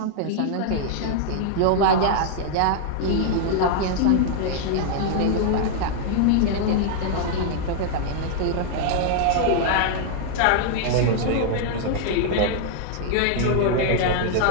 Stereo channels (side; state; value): both; different; correlation 0.00